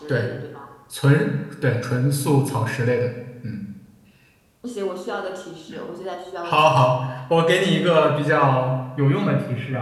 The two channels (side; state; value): both; identical; correlation 1.00